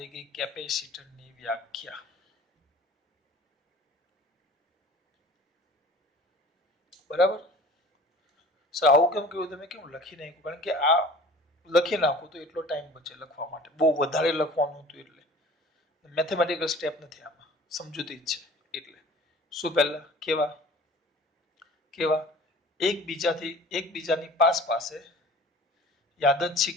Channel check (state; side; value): normal; both; correlation 0.45